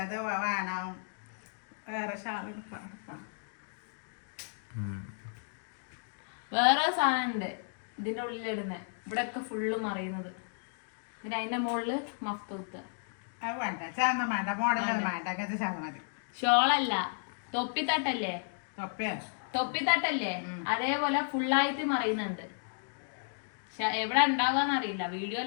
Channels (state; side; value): silent; right; digital silence